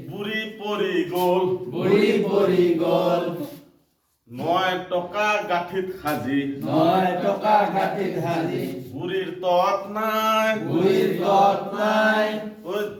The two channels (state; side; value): identical; both; correlation 1.00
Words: বুঢ়ী পৰি গ'ল, বুঢ়ী পৰি গ'ল। 9 টকা গাঁঠিত সাজি 9 টকা গাঁঠিত সাজি বুঢ়ীৰ তত নাই, বুঢ়ীৰ তত নাই, ওই